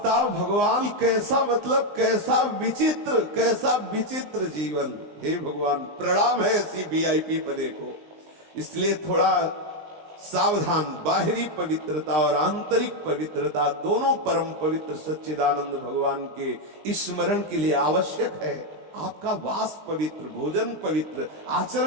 भगवान कैसा, मतलब कैसा विचित्र जीवन। हे भगवान, प्रणाम है ऐसी वीआईपी पने को। इसलिए थोड़ा सावधान, बाहरी पवित्रता और आंतरिक पवित्रता दोनों परम पवित्र सच्चिदानंद भगवान के स्मरण के लिए आवश्यक है। आपका वास पवित्र, भोजन पवित्र,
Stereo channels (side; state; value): left; late; 19 ms